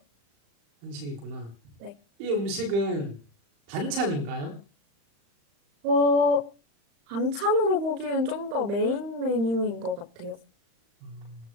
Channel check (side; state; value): left; late; 35 ms